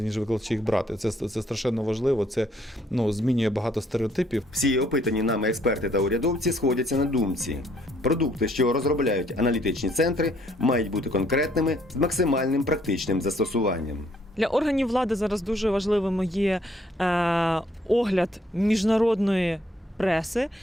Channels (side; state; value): both; normal; correlation 0.67